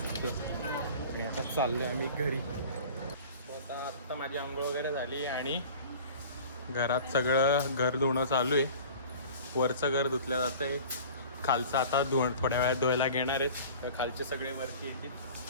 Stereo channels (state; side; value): inverted; both; correlation -0.42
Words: आता चाललो आहे आम्ही घरी. तर आत्ता माझी आंघोळ वगैरे झाली आणि घरात सगळं घर धुणं चालू आहे. वरचं घर धुतलं जातं आहे, खालचं आता थोड्या वेळात धुवायला घेणार आहेत. खालचे सगळे वरती येतील